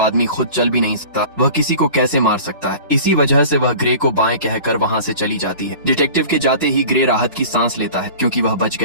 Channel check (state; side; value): inverted; both; correlation -0.40